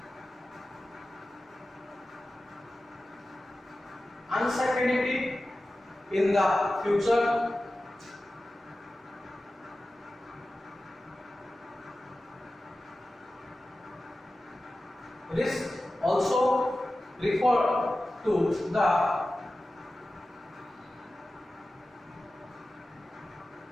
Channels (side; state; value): both; normal; correlation 0.95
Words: uncertainty in the future, risk also refer to the